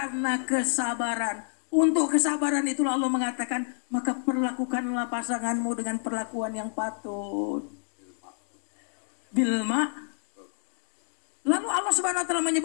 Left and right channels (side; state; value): right; silent; digital silence